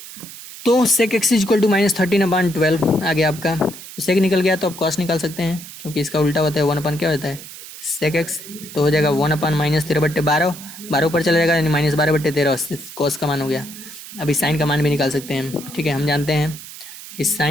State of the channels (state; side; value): noise; right; hiss, 14 dB below the sound